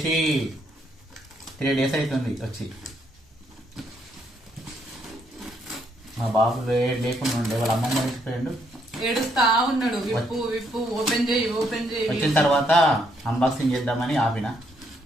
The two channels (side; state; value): both; normal; correlation 0.72